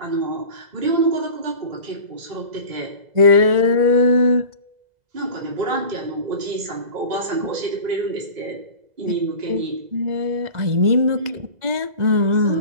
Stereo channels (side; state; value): left; late; 2.0 ms